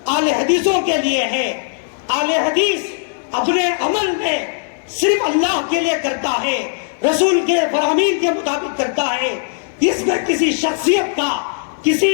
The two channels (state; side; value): silent; right; digital silence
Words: اہل حدیثوں کے لیے ہے. اہل حدیث اپنے عمل میں صرف اللہ کے لیے کرتا ہے، رسول کے فرامین کے مطابق کرتا ہے، اس میں کسی شخصیت کا، کسی